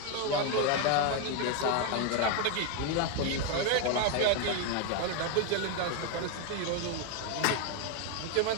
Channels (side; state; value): both; different; correlation 0.01